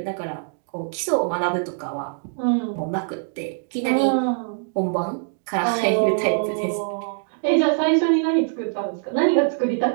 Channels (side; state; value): left; silent; digital silence